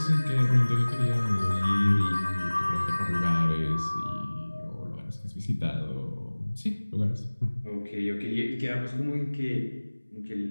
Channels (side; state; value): both; inverted; correlation -1.00